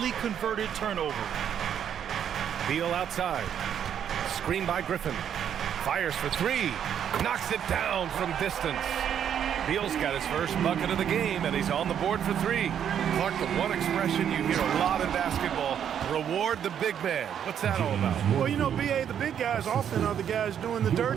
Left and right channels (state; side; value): quieter; left; 9.0 dB